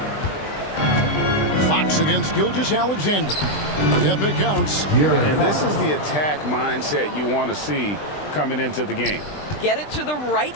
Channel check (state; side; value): late; right; 20 ms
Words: Fox against Gilgeous-Alexander. Yep, it counts. And this is the attack mindset you want to see coming into the game. Get it to the right